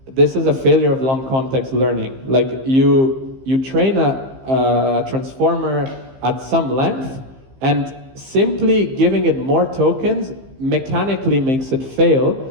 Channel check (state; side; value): late; left; 15 ms